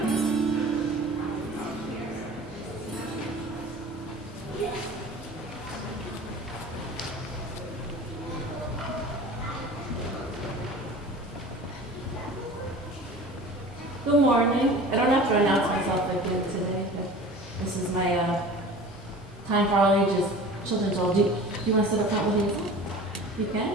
Good morning. I don't have to announce myself again today, but this is my time for all ages children's role. Do you want to sit up front with me? You can?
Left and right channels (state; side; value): normal; both; correlation 0.40